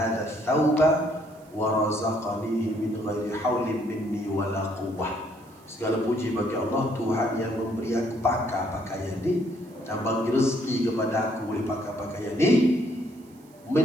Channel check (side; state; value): right; noise; hiss, 29 dB below the sound